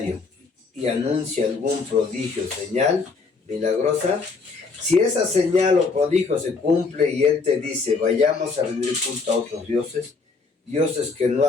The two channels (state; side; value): quieter; right; 4.4 dB